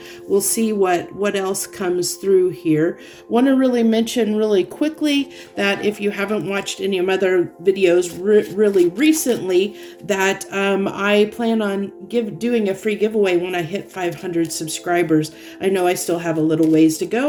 We'll see what else comes through here. Want to really mention really quickly that if you haven't watched any of my other videos really recently, that I plan on doing a free giveaway when I hit 500 subscribers. I know I still have a little ways to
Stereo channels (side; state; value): both; identical; correlation 1.00